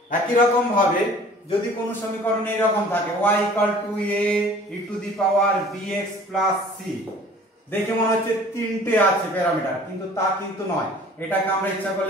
একই রকম ভাবে যদি কোন সমীকরণ এইরকম থাকে y = a e to the power bx plus c, দেখে মনে হচ্ছে তিনটে আছে প্যারামিটার, কিন্তু তা কিন্তু নয়। এটাকে আমরা ইচ্ছা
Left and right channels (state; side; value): normal; both; correlation 0.49